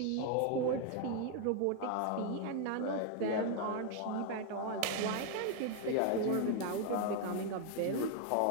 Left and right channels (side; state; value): both; different; correlation 0.00